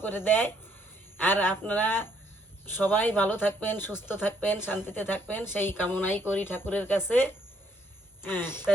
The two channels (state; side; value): normal; both; correlation 0.69